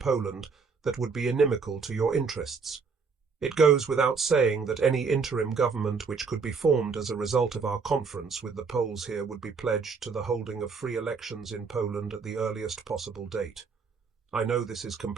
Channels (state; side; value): quieter; left; 5.1 dB